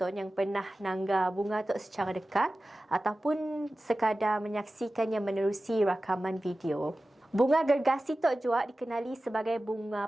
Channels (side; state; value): both; normal; correlation 0.95